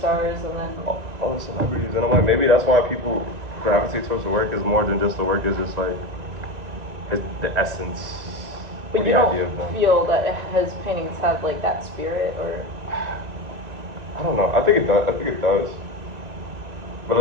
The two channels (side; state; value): left; late; 2.7 ms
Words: and then all the celebrities, and I'm like, maybe that's why people gravitate towards the work is more than just the work. Is just like the essence. But you don't idea of them. feel that his paintings have like that spirit, or I don't know. I think it does. I think it does. But